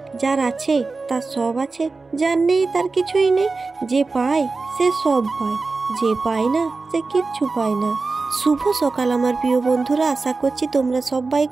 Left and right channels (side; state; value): left; quieter; 3.9 dB